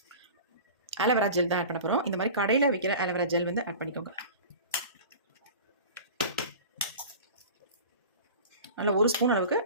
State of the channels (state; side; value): inverted; both; correlation -0.37